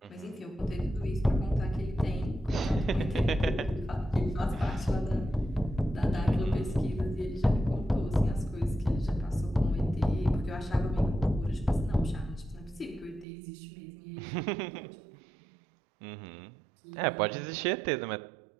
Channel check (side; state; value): left; drops out; at 13.2 s